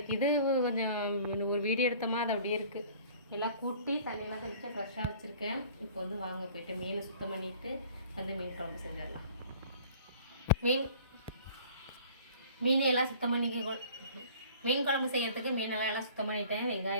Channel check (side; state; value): both; inverted; correlation -0.49